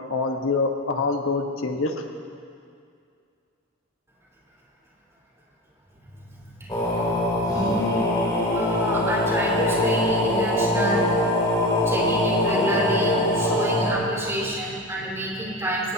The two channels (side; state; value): both; normal; correlation 0.24